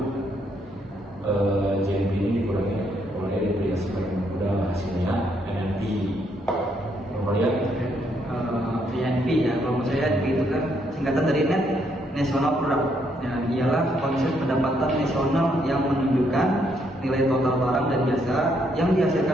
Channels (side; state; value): both; normal; correlation 0.73